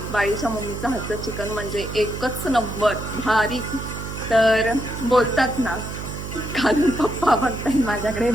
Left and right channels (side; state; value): right; noise; hum, 7 dB below the sound